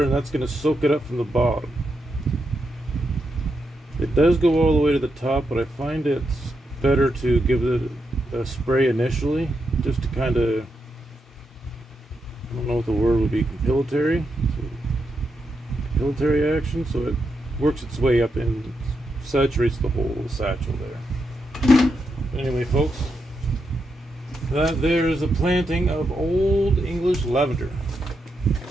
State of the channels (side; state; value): both; normal; correlation 0.84